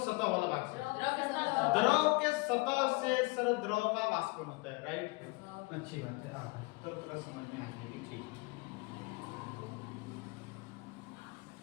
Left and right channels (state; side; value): quieter; right; 26.3 dB